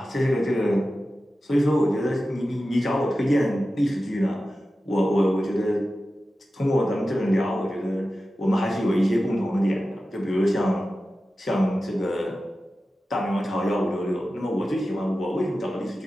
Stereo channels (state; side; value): normal; both; correlation 0.94